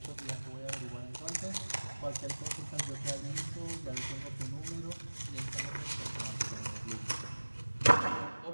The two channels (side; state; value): both; inverted; correlation -1.00